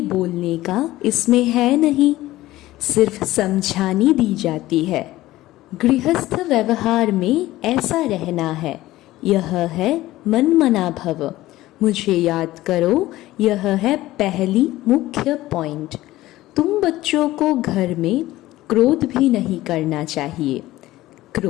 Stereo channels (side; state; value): right; quieter; 16.5 dB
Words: का इसमें है नहीं, सिर्फ समझानी दी जाती है। गृहस्थ व्यवहार में ऐसा रहना है। यह है मन मना भव। मुझे याद करो, यह है पहली मुख्य पॉइंट। तुम बच्चों को घर में क्रोध भी नहीं करना चाहिए।